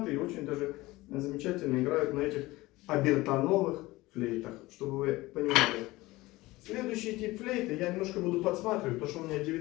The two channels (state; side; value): quieter; right; 19.6 dB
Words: и очень даже замечательно играют на этих обертоновых флейтах, чтобы вы понимали. Следующий тип флейты я немножко буду подсматривать, потому что у меня